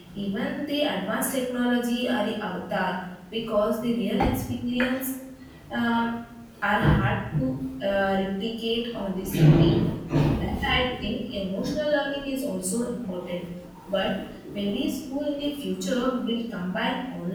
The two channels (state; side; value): identical; both; correlation 1.00